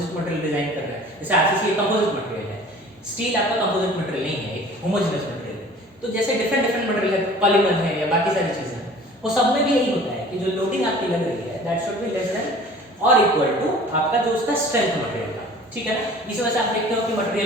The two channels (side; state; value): both; normal; correlation 0.46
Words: मटेरियल डिजाइन कर रहा है, जैसे आरसीसी एक कंपोजिट मटेरियल है, स्टील आपका कंपोजिट मटेरियल नहीं है, एक होमोजेनस मटेरियल है। तो जैसे डिफरेंट डिफरेंट मटेरियल है, पॉलीमर है या बाकी सारी चीजें हैं, वो सब में भी यही होता है कि जो लोडिंग आपकी लग रही है that should be less then और इक्वल टू आपका जो उसका स्ट्रेंथ मटेरियल का। ठीक है ना, इस वजह से आप देखते हो कि